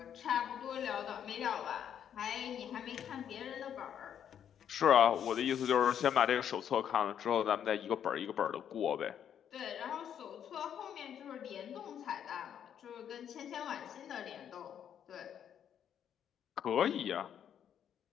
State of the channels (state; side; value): quieter; right; 9.1 dB